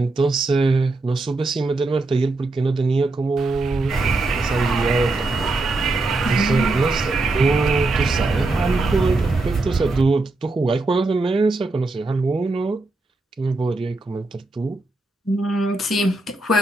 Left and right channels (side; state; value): left; quieter; 3.1 dB